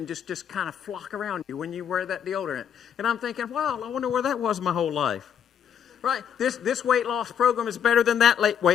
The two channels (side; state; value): right; quieter; 8.4 dB